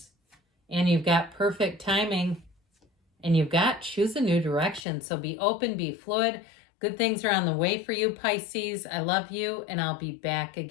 And you've got perfect timing. And you've got choose a new direction. So be open, be fluid. Good things are on the way for you, Pisces. I love you, and I'll be back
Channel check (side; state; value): right; drops out; at 4.9 s